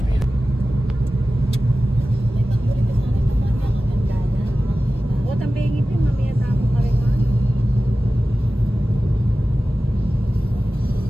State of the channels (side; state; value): both; normal; correlation 0.95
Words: pil. O, tambingin din. Mamaya tamo ka rin.